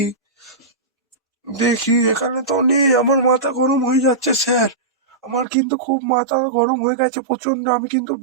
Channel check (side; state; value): left; drops out; at 5.5 s